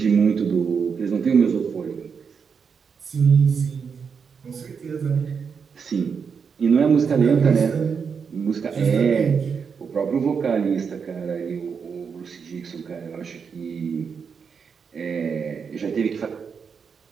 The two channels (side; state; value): left; quieter; 6.1 dB